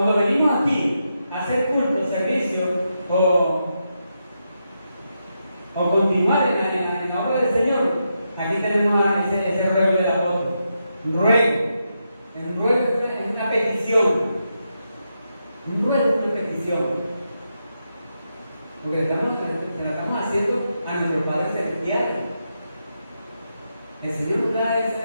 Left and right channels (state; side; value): inverted; both; correlation -0.84